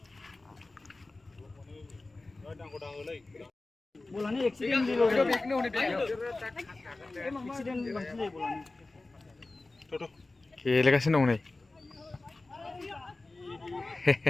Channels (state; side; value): quieter; right; 3.2 dB